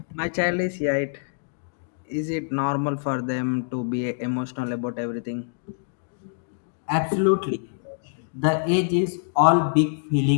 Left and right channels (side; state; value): right; silent; digital silence